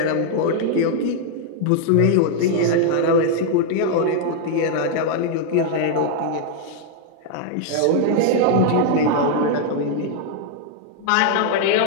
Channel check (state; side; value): different; both; correlation -0.01